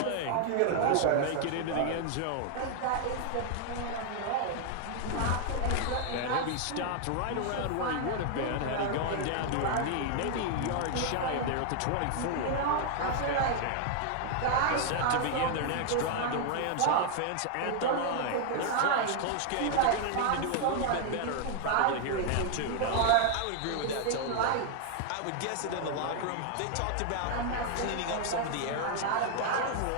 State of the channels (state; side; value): different; both; correlation 0.00